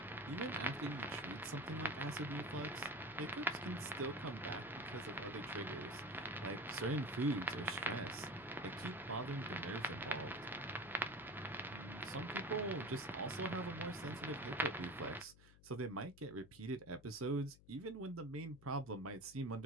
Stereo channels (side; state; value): left; noise; hum, 22 dB below the sound